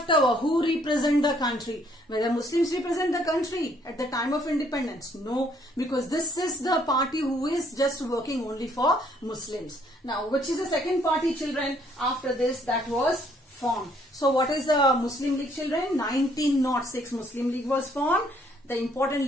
over. Who represent the country? Whether Muslims represent the country at the time of independence? No, because this is the party who is just working only for Muslims. Now, which is the second party, children, after this that was formed? So what is the Muslim League, children? 1906 Muslim League was formed. The important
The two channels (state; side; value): normal; both; correlation 0.66